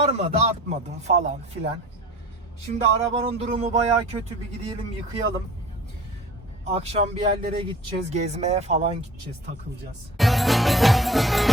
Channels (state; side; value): normal; both; correlation 0.44